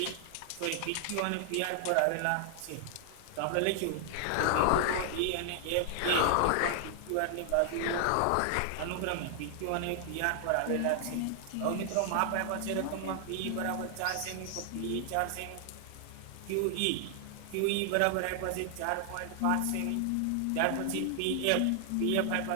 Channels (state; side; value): different; both; correlation 0.00